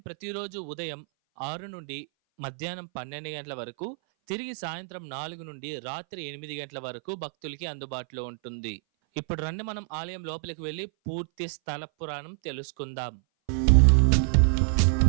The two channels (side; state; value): left; silent; 58 dB below the other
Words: ప్రతిరోజు ఉదయం 6 నుండి మధ్యాహ్నం 12 గంటల వరకు, తిరిగి సాయంత్రం 4 నుండి రాత్రి 8 గంటల వరకు భక్తులకి అందుబాటులో ఉంటుంది. ఇప్పుడు రండి మనం ఆలయం లోపలికి వెళ్ళి పూర్తి స్థల పురాణం తెలుసుకుందాం.